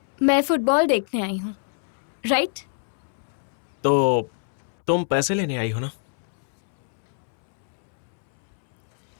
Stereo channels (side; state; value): right; silent; 63 dB below the other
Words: मैं फुटबॉल देखने आई हूँ, राइट? तो तुम पैसे लेने आई हो ना?